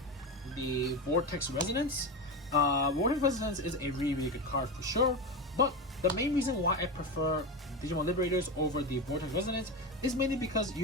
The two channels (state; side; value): normal; both; correlation 0.18